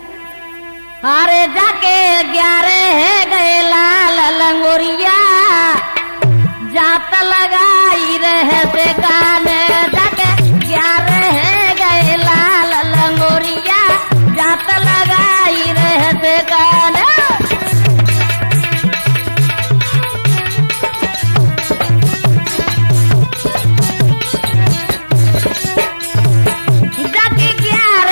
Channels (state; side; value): inverted; both; correlation -1.00